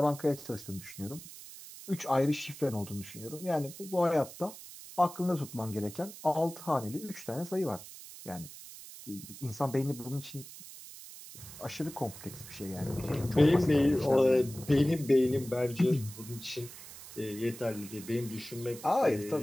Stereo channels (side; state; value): right; noise; hiss, 15 dB below the sound